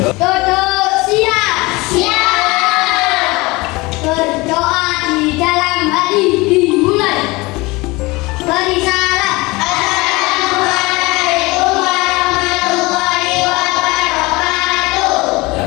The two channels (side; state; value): right; quieter; 23.0 dB